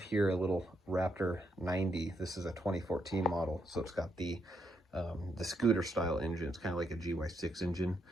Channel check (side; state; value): both; normal; correlation 0.78